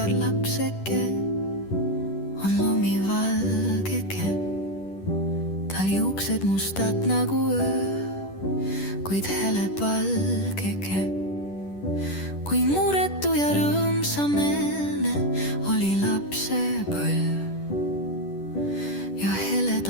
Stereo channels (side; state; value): right; late; 10 ms